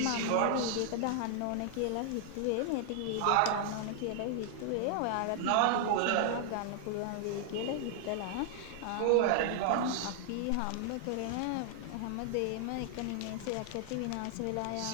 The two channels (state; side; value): different; both; correlation 0.00